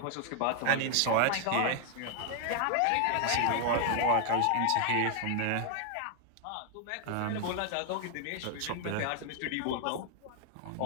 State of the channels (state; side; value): different; both; correlation 0.00